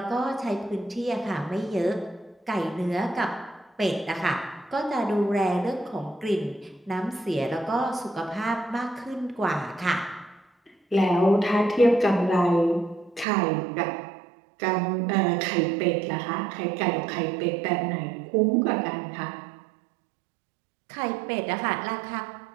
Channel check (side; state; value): left; drops out; at 13.2 s